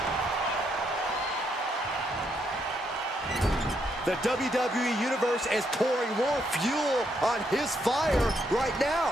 The WWE Universe is pouring more fuel on his fire right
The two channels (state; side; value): normal; both; correlation 0.76